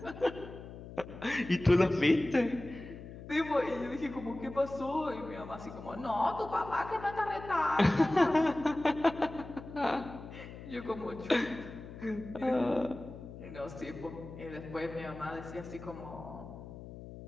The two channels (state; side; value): noise; left; hum, 13 dB below the sound